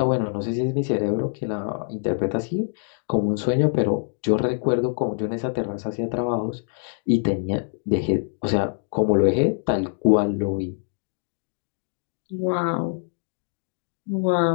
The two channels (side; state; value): right; silent; digital silence